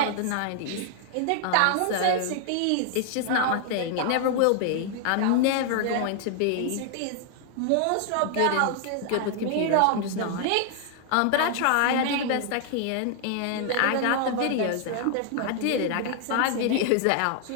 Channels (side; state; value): both; different; correlation 0.00